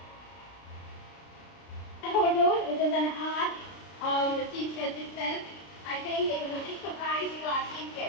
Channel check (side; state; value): right; late; 33 ms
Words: Photo, it is an art of the chief guest itself. I think it is a big surprise to our chief